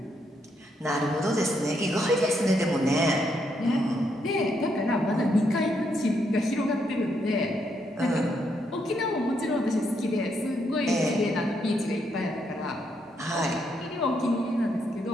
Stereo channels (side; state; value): both; normal; correlation 0.77